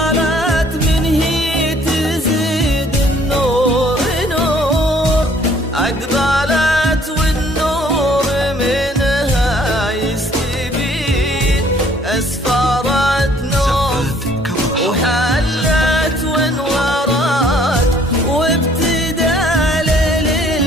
من هي تزيد النور نور، أقبلت والنور منها يستبين، أسفرت نور وحلت وانورت، وابتدى ليل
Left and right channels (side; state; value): both; normal; correlation 0.60